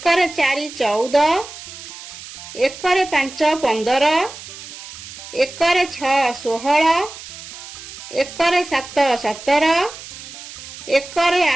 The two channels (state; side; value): noise; right; hiss, 14 dB below the sound